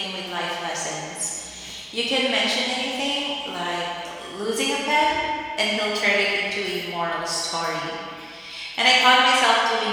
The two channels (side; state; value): both; identical; correlation 1.00